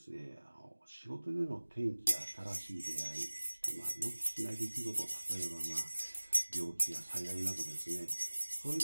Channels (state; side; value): inverted; both; correlation -1.00